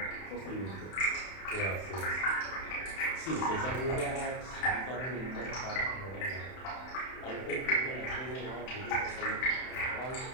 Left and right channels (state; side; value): late; right; 31 ms